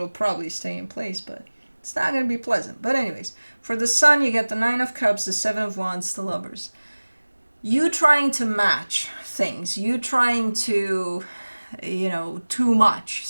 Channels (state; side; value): inverted; both; correlation -1.00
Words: probably stay in place, but it's not going to be pleasant. But anyways, for the Sun, you get the 9 of Cups, the 7 of Wands, the Lovers. You trying to match things, you trying to, too much